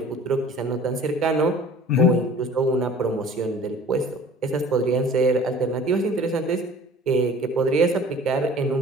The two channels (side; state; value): both; normal; correlation 0.46